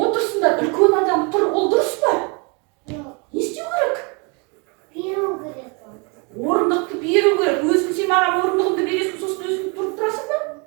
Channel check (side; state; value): left; quieter; 32.3 dB